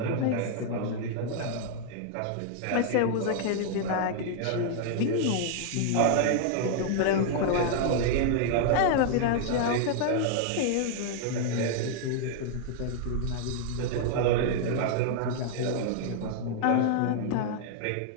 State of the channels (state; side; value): different; both; correlation -0.01